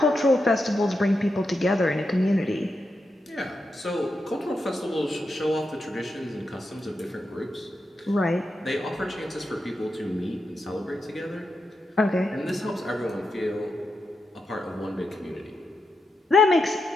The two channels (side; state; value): both; normal; correlation 0.86